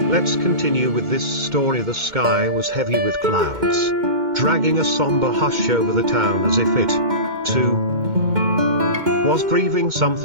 Let's continue with this story. The sky was heavy with clouds, dragging a somber hush over the town as if it, too, was grieving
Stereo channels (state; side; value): late; left; 2.2 ms